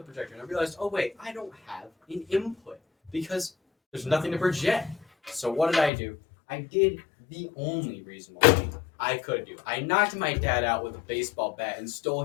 projector and I realized, oh wait, I don't have an input because there's nothing to project. So what did I do? I did the only reasonable thing I could do. I knocked my dad out with a baseball bat and stole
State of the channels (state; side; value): drops out; right; at 5.9 s